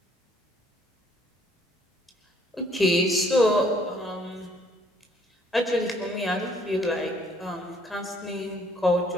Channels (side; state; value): both; normal; correlation 0.63